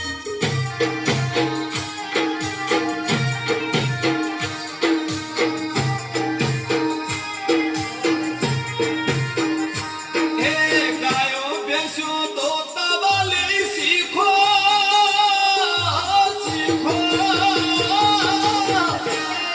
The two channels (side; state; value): both; identical; correlation 1.00